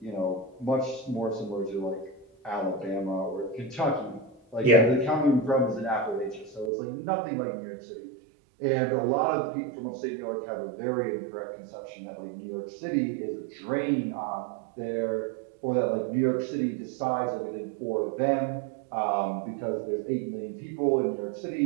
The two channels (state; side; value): drops out; left; at 6.7 s